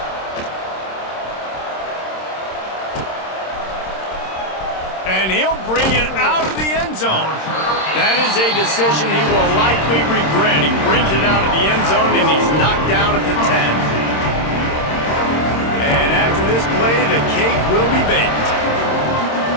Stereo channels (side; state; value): right; late; 26 ms